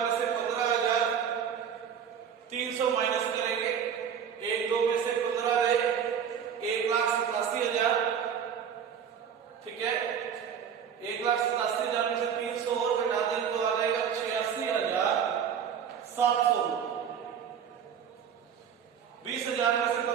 से 15,300 माइनस करेंगे। 1,2 में से 15 ले 1,87,000। ठीक है, 1,87,000 में से 300 और घटा दें तो आ जाएगा 86,000। 700। 20,000 में से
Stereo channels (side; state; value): left; quieter; 7.9 dB